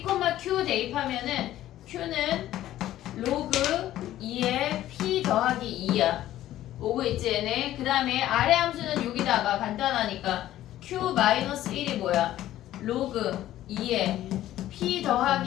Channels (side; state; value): right; quieter; 13.6 dB